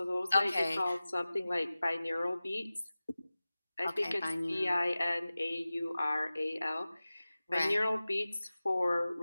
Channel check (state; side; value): inverted; both; correlation -0.96